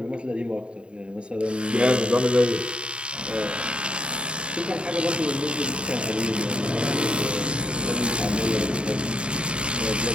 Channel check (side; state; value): left; late; 0.054 ms